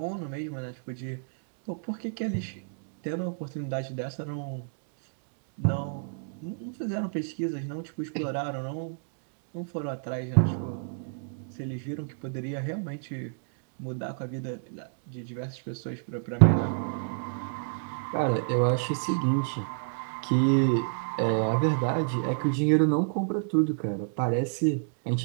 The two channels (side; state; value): left; silent; digital silence